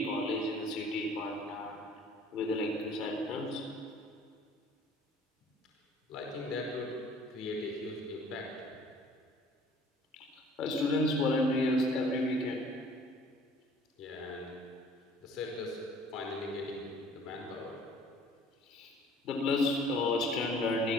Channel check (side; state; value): both; normal; correlation 0.53